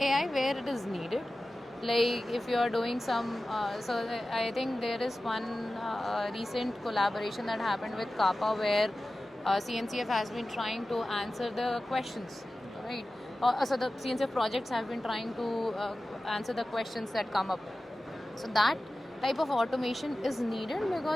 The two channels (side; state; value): both; normal; correlation 0.95